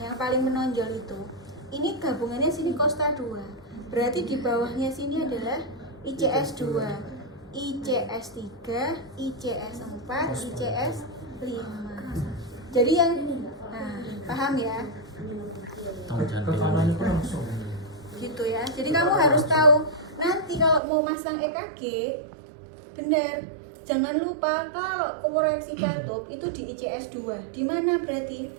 paling menonjol itu, ini gabungannya sini Costa 2. Berarti di bawahnya sini adalah ICS 2, ICS 3, ICS 4, ICS 5. Jadi yang paham ya? Rekamannya itu langsung. Gitu ya. Jadi kamu harus tahu nanti kalau mau masang EKG benar. Jangan lupa kalau koreksi katup itu di ICS 2. Di mana berarti?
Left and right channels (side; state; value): left; drops out; at 20.8 s